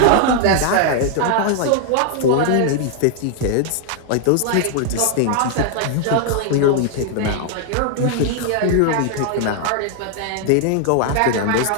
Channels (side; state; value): both; different; correlation 0.00